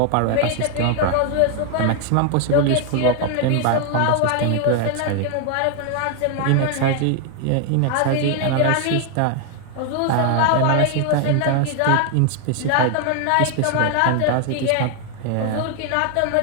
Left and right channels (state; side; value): different; both; correlation 0.00